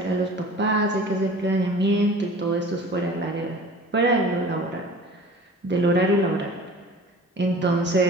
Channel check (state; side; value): normal; both; correlation 0.43